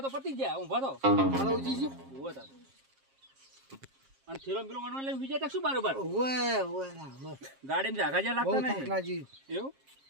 તો પતી ગયા હું ભરો મારો ઉજી છે ઉભો થા અને થેલો પેલો વણવા લઈને વિજય તક શું બારોબાર ઓય ના ગાડીમાં જાગા જ્યાં બહુ લાગતા નહીં થકલાજી એવું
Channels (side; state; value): left; late; 7.4 ms